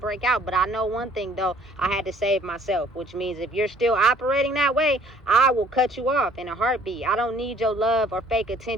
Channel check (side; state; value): both; normal; correlation 0.58